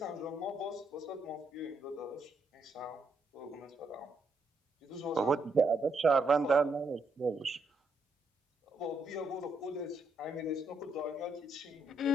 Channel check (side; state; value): both; normal; correlation 0.77